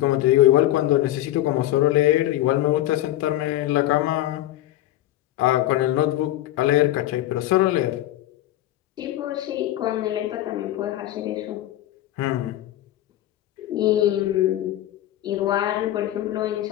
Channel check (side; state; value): right; quieter; 14.2 dB